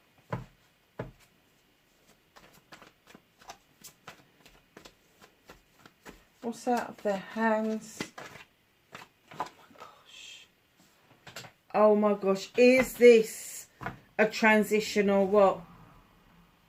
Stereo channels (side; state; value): both; identical; correlation 1.00